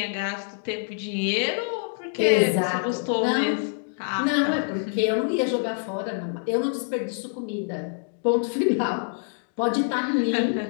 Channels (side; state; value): right; silent; digital silence